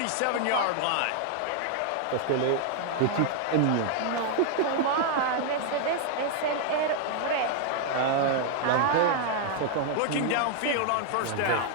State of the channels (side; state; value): both; different; correlation 0.00